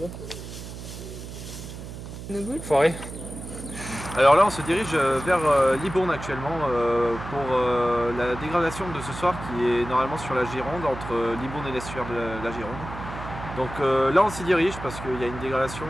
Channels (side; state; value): right; noise; hum, 11 dB below the sound